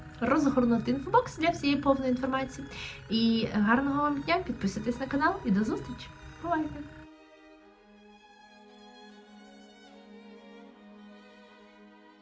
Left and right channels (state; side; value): identical; both; correlation 1.00